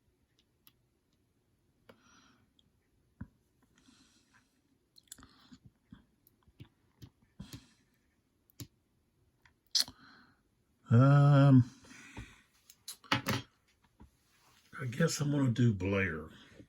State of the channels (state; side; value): identical; both; correlation 1.00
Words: I guess I'm going to do Blair